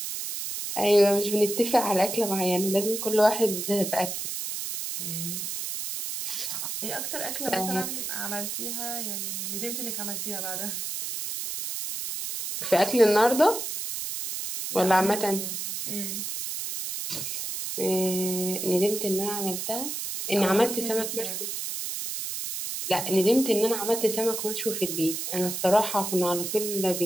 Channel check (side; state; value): right; noise; hiss, 4 dB below the sound